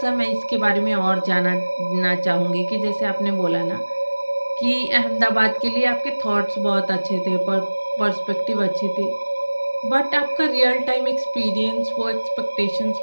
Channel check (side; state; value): both; inverted; correlation -1.00